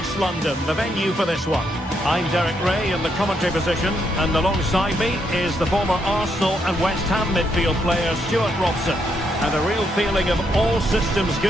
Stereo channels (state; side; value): normal; both; correlation 0.77